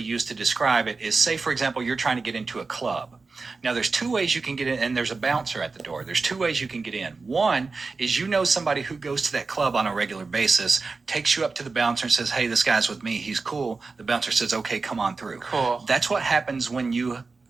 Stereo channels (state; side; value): quieter; left; 4.2 dB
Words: to describe it is, say, for example, you're trying to get into a club. Now, there's 2 ways you can get in, and there's a bouncer at the door. There's 2 ways you can get in. One is somebody who goes to that club on a regular basis, takes you up to the bouncer and says, hey, this guy's with me. He's cool. The bouncer says, okay, come on through. Cool. That's what happens when you